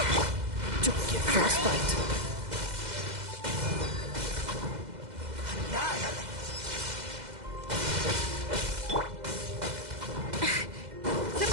Don't get frostbite!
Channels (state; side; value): late; left; 2.0 ms